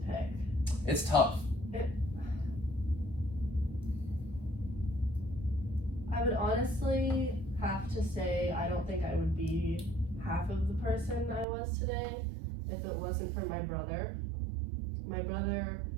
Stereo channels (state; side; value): drops out; left; at 11.5 s